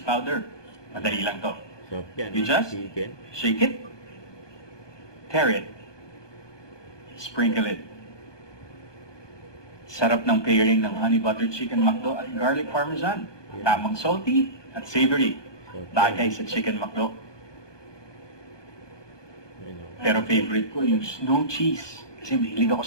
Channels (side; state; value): right; late; 1.2 ms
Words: Madali lang to. So, yan, You just chicken. shake it, tear it, sprinkle it. Sarap ng pairing ng honey butter chicken McDo at garlic parmesan. Tamang salty at savory. So, Bagay sa chicken McDo. Pero favorite ko yung snow cheese kasi mahilig ako